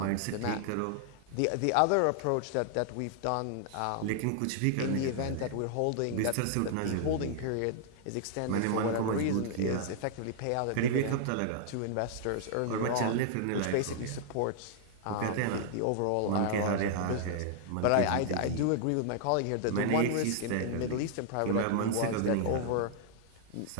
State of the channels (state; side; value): different; both; correlation -0.01